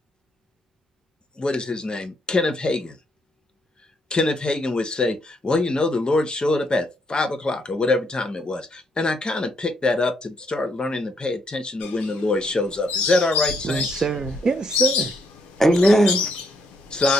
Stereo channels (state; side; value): normal; both; correlation 0.73